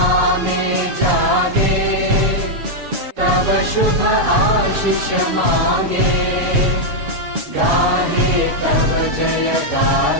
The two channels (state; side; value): late; left; 7.1 ms